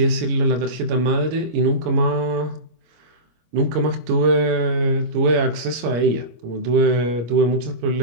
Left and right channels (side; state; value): left; late; 25 ms